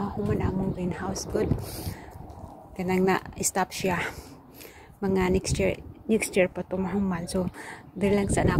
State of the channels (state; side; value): identical; both; correlation 1.00